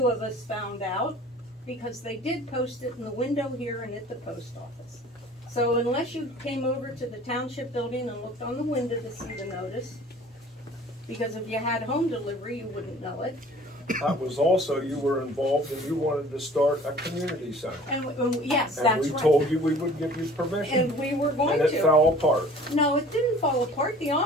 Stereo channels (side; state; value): both; normal; correlation 0.48